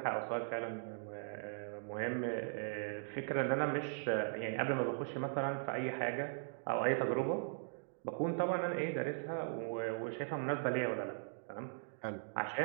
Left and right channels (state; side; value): silent; left; digital silence